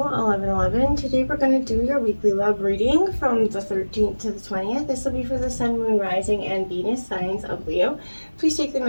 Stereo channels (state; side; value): inverted; both; correlation -1.00